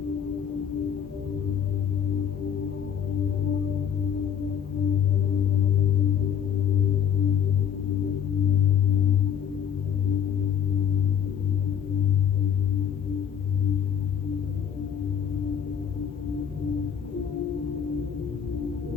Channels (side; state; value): right; quieter; 8.3 dB